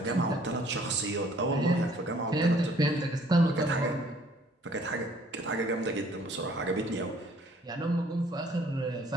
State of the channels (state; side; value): normal; both; correlation 0.59